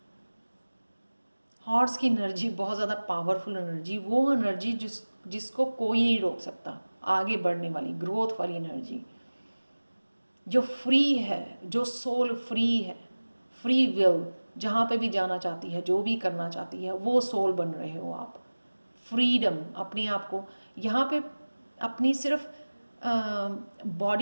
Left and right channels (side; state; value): both; inverted; correlation -1.00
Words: हॉर्स की एनर्जी बहुत ज़्यादा पावरफुल एनर्जी, वो एनर्जी जिसको कोई नहीं रोक सकता, आगे बढ़ने वाली, ग्रोथ वाली एनर्जी, जो फ्री है, जो सोल फ्री है, फ्री विल, जहाँ पे भी जाना चाहती है, जो भी करना चाहती है, वो सोल बन रहे हो आप। फ्रीडम, अपने आप को यहाँ पे अपनी सिर्फ